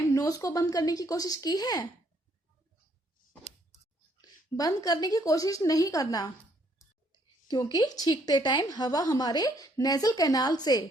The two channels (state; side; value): normal; both; correlation 0.68